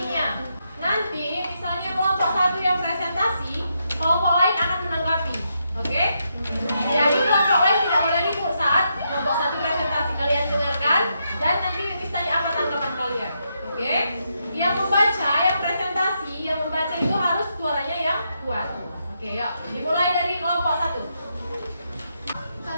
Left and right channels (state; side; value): inverted; both; correlation -0.81